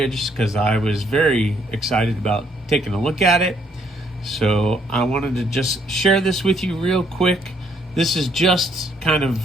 because I was very excited about taking a look at it. So I wanted to just share this with you real quick. This is just kind of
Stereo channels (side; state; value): both; normal; correlation 0.68